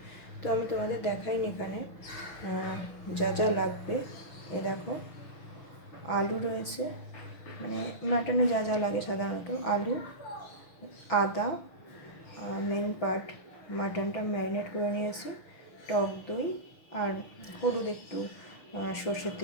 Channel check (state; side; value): late; right; 6.1 ms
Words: তো আমি তোমাদের দেখাইনি এখানে যা যা লাগবে। এ দেখো, আলু রয়েছে, মানে মাটনে যা যা লাগে সাধারণত আলু, আদা, মেন পার্ট মাটনটা ম্যারিনেট করে নিয়েছি, টক দই আর হলুদ একটু সর্ষের